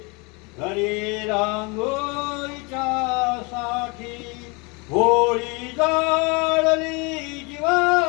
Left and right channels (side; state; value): right; quieter; 29.0 dB